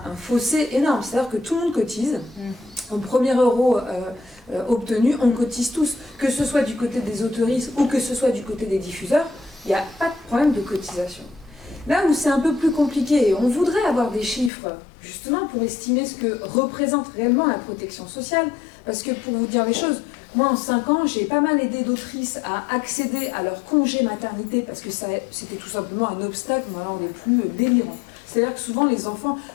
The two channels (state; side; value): drops out; right; at 14.5 s